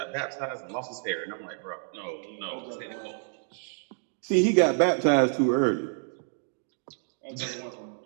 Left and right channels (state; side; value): silent; left; 59 dB below the other